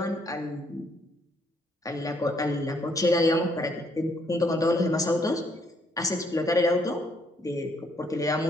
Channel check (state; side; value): normal; both; correlation 0.69